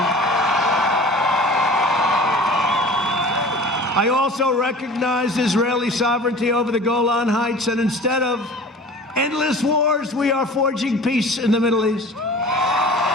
I also recognized Israeli sovereignty over the Golan Heights, and instead of endless wars, we are forging peace in the Middle East.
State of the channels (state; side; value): normal; both; correlation 0.41